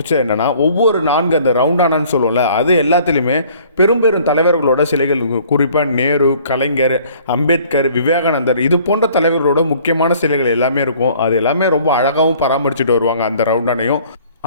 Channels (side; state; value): both; inverted; correlation -0.55